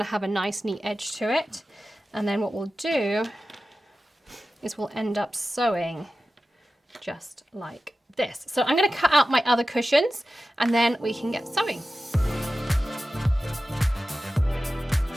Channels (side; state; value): both; normal; correlation 0.94